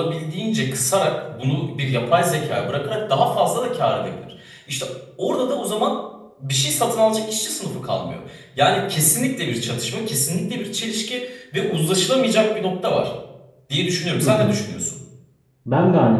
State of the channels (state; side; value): identical; both; correlation 1.00